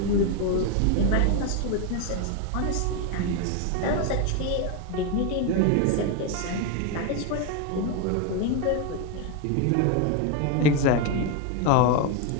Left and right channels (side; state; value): both; different; correlation 0.01